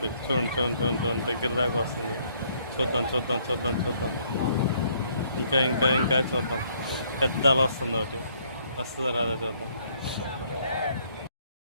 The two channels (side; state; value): both; inverted; correlation -0.67